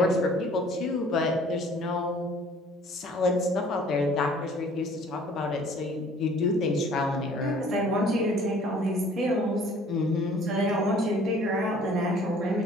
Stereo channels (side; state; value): both; normal; correlation 0.54